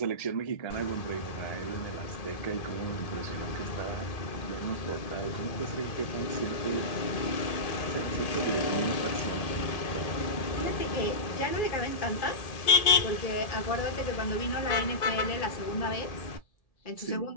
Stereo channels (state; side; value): late; right; 1.7 ms